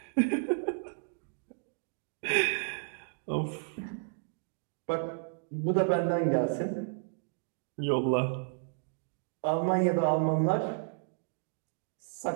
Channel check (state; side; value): silent; left; digital silence